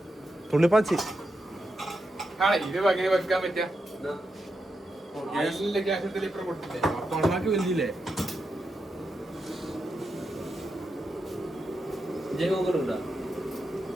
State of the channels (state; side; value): normal; both; correlation 0.86